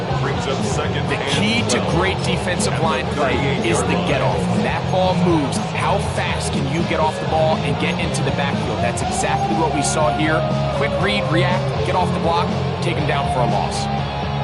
The key to great defensive line play is the get-off. When that ball moves, how fast can you get off the ball and get into the backfield? That's exactly what we saw here. Quick read, react, get off the block, take him down for a loss.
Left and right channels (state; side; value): identical; both; correlation 1.00